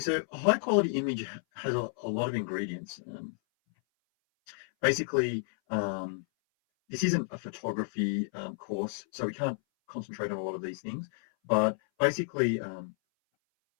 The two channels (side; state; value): right; silent; 57 dB below the other